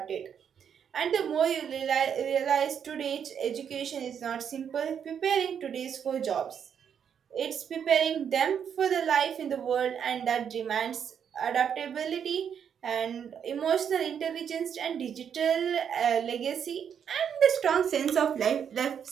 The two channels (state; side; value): quieter; left; 8.0 dB